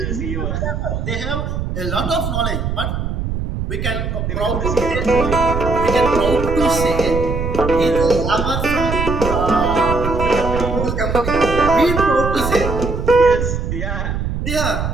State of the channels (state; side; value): noise; right; rumble, 3 dB below the sound